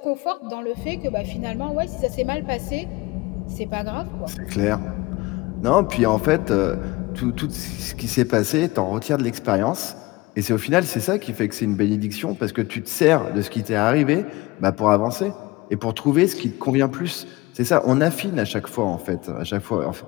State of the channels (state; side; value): quieter; right; 21.5 dB